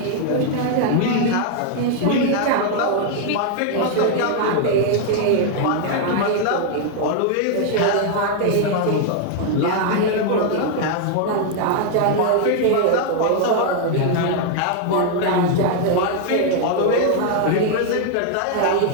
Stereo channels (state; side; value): different; both; correlation 0.00